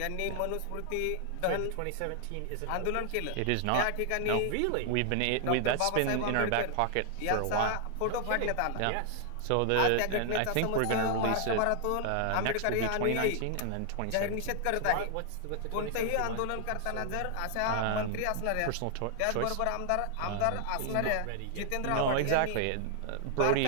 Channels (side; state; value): both; different; correlation 0.00